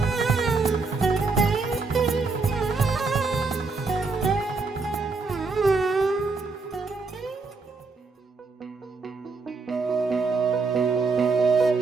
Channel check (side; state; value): left; quieter; 4.1 dB